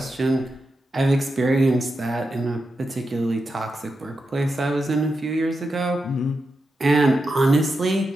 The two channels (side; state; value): both; normal; correlation 0.88